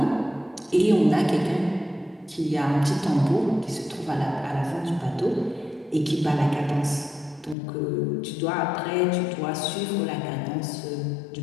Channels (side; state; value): right; drops out; at 7.6 s